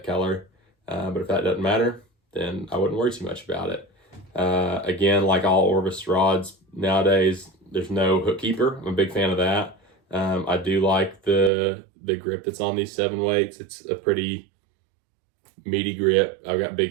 color. But if that doesn't matter, then I wouldn't worry too much about it. Again, like all Orvis rods nowadays, there's no hook keeper. I'm a big fan of that. I do like the grip that's on these 7 weights. It's a pretty meaty grip. I've got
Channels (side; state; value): left; drops out; at 11.5 s